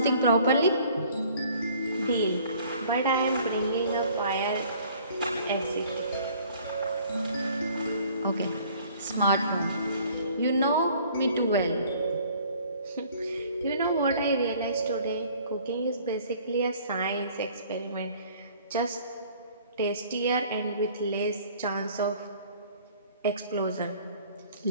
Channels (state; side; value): inverted; both; correlation -0.54